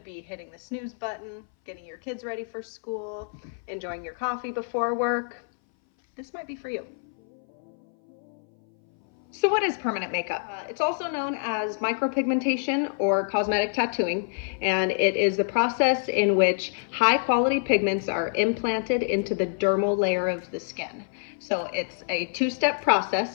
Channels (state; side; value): silent; right; 59 dB below the other